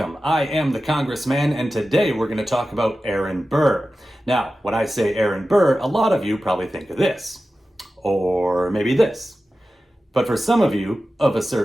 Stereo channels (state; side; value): normal; both; correlation 0.94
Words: I am the Congressman and today we're going to talk about Aaron Burr. Now, when I say Aaron Burr, a lot of you probably think of this. Or maybe this. But for some of you of a